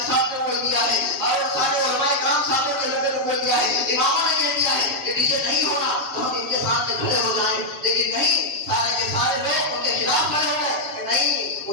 صاحب نے بول دیا ہے، اور سارے علماء کرام صاحبوں کے لوگوں نے بول دیا ہے، اماموں نے کہہ دیا ہے کہ ڈیجے نہیں ہونا، تو ہم ان کے سامنے کھڑے ہو جائیں. لیکن نہیں، سارے کے سارے لوگ ان کے خلاف کھڑے ہو گئے کہ نہیں،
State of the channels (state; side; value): late; left; 7.4 ms